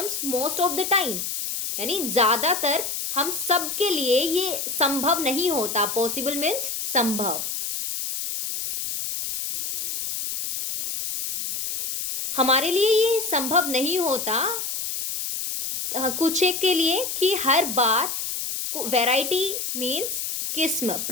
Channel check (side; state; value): left; noise; hiss, 4 dB below the sound